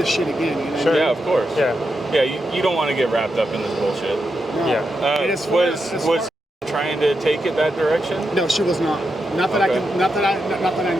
shit again. You know? Sure. Yeah, of course. Yeah. Yeah, you don't want to get wrapped up in this bullshit. No. Yeah. It is Was trying to take it that direction? No, she was not. Not that Okay. not that I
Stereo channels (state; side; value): normal; both; correlation 0.86